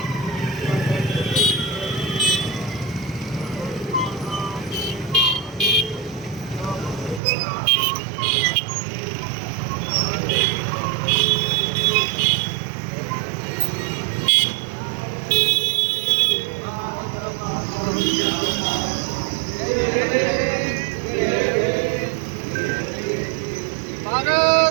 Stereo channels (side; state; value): left; drops out; at 7.2 s